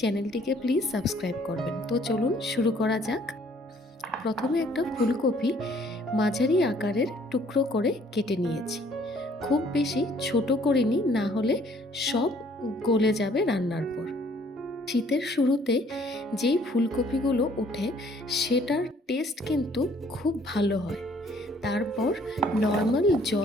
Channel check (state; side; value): normal; both; correlation 0.60